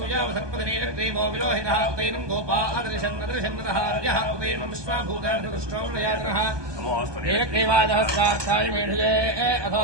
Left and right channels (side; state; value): left; late; 1.2 ms